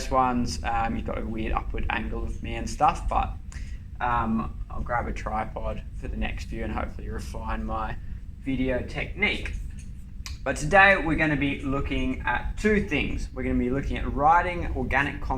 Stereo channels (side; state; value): both; identical; correlation 1.00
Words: one's you've got a weird upward angle of me and stuff, but I'll grab a tripod for the next few and hopefully refine my video technique. But today we're going to be looking at two things. We're going to be looking at writing organic